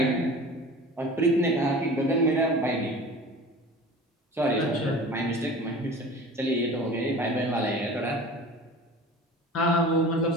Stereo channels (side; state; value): both; normal; correlation 0.40